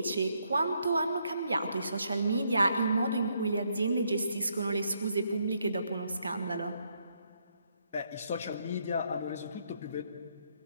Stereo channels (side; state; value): both; inverted; correlation -0.74